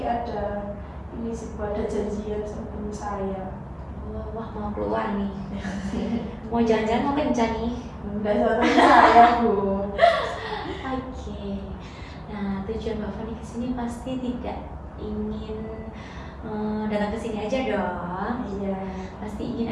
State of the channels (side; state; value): both; identical; correlation 1.00